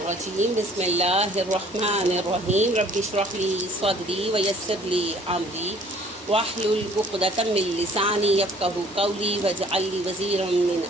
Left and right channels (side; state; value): both; normal; correlation 0.55